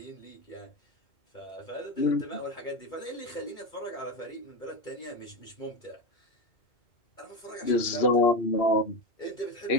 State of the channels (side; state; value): right; late; 2.3 ms